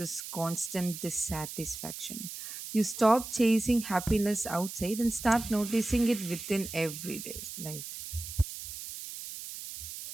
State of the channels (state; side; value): noise; right; hiss, 9 dB below the sound